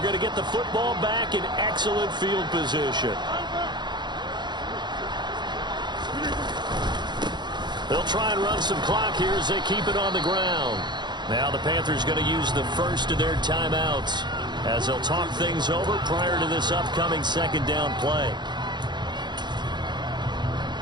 to get the football back in excellent field position. They'll try and run some clock here as they keep it on the ground. Now the Panthers going to use the first of their timeouts as they'll talk things over prior to this upcoming 2nd down play.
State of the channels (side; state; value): left; late; 0.21 ms